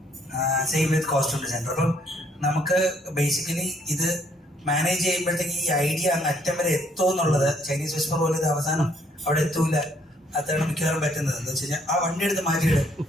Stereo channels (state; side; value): normal; both; correlation 0.67